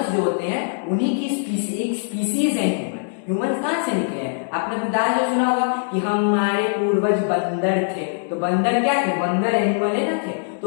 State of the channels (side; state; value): right; silent; 64 dB below the other